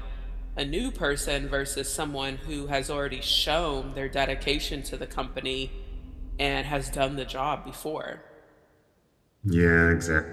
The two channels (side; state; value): both; identical; correlation 1.00